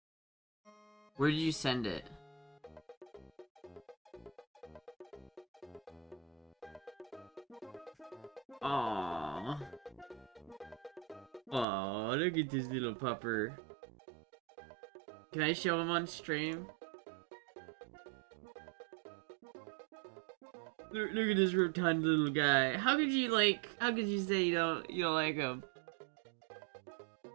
Where did you send it? Aww. Aww, look at this little pupper. Can I show him on stream? Look at this rotund little guy. How could you say you don't like him?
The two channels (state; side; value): drops out; left; at 11.7 s